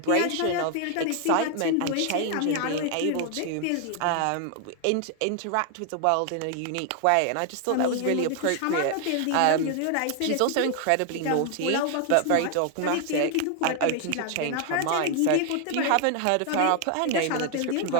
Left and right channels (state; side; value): different; both; correlation 0.00